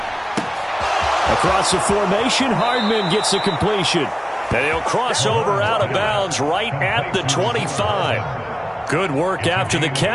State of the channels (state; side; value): identical; both; correlation 1.00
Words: Across the formation, Hardman gets the completion. And he'll cross over out of bounds right at the 25. Good work after the